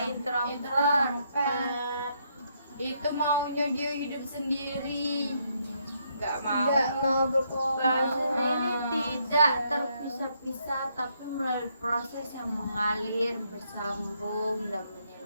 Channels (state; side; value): inverted; both; correlation -0.74